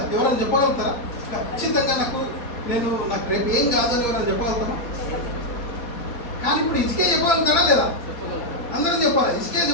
ఎవరైనా చెప్పగలుగుతారా? ఖచ్చితంగా నాకు రేపు ఏం కాదని ఎవరైనా చెప్పగలుగుతారా? కానీ ఇప్పుడు ఇసుకే చెప్పగలుగుతాడా లేదా? అందరూ చెప్పాలి. ఇసుకే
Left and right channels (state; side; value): late; right; 4.2 ms